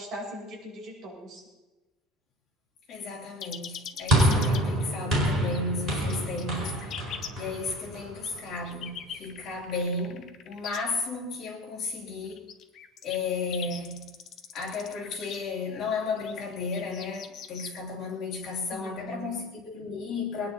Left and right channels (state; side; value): normal; both; correlation 0.38